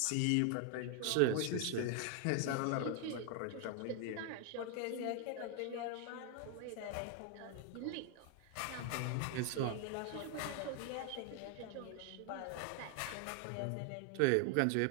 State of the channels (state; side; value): different; both; correlation 0.00